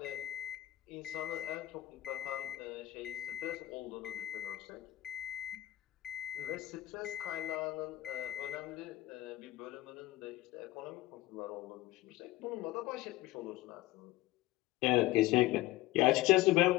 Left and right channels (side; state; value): right; quieter; 16.8 dB